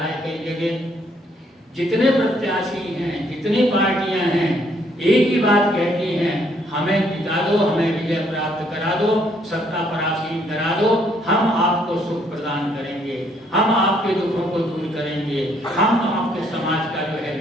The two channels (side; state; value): both; normal; correlation 0.68